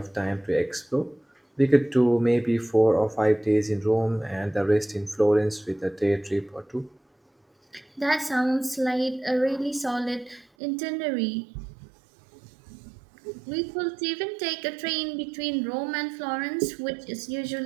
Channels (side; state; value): left; drops out; at 10.5 s